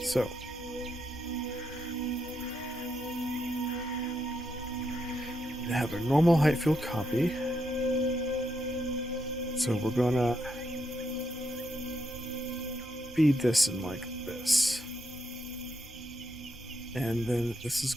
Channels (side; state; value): both; normal; correlation 0.80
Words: So we have a normal height field copy. So we're gonna feed this in like this. And then this is